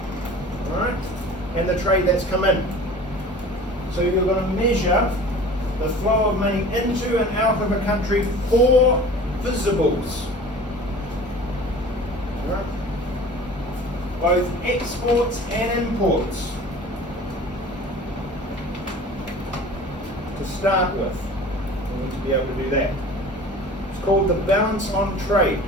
right, and the trade that's come in. So you're going to measure the flow of money into and out of a country for visibles, right? Both exports and imports. To start with, we need to be able to do that. It's called the balance on trade,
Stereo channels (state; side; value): normal; both; correlation 0.42